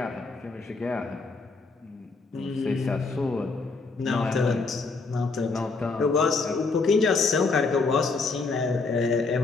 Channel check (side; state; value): right; quieter; 4.1 dB